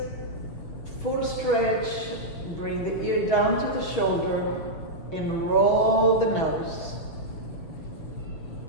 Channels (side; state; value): right; late; 6.9 ms